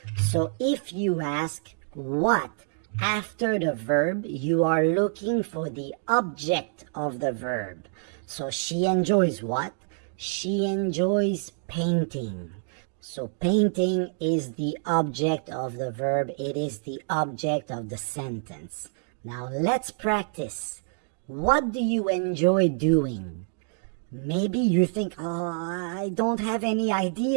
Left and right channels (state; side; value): silent; left; digital silence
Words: So if you ask what after the verb, you are looking for the object of the verb. So she enjoys what? She enjoys painting. So painting is the object of the verb. It is the object of the sentence. Now let's practice. What do you enjoy doing? Maybe you think, I don't have any